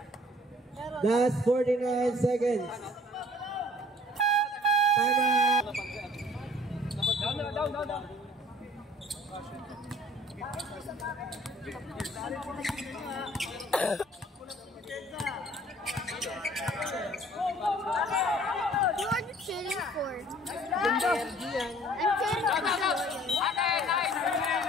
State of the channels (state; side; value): normal; both; correlation 0.54